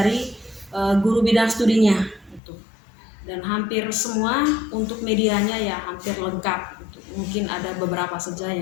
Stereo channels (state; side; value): drops out; right; at 2.4 s